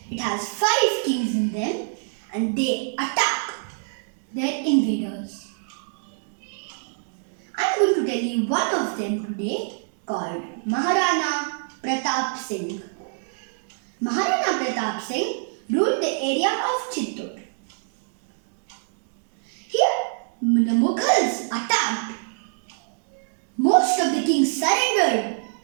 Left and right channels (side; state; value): left; silent; digital silence